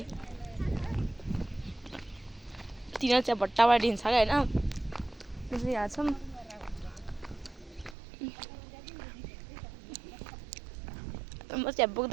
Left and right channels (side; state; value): left; drops out; at 8.0 s